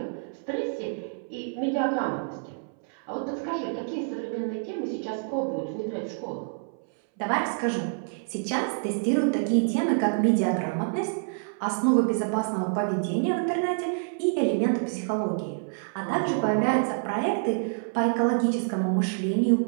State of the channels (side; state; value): left; silent; 59 dB below the other